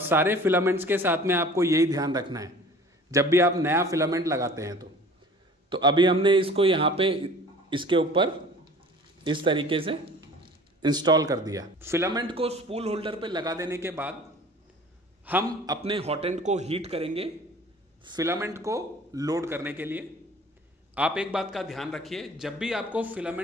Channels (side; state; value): both; normal; correlation 0.46